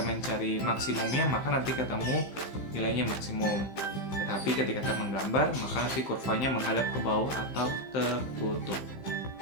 mencari maksimumnya, maka nanti ketemu nilainya maksimum. Tetapi ketika kita menggambar, maka nanti kurvanya menghadap ke bawah atau tertutup.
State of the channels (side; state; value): right; late; 15 ms